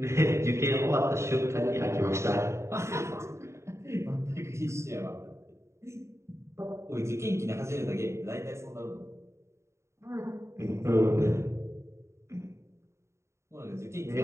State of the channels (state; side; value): late; left; 0.14 ms